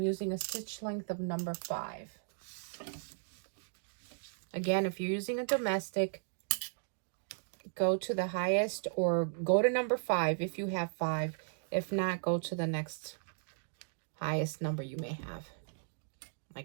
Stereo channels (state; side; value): silent; left; digital silence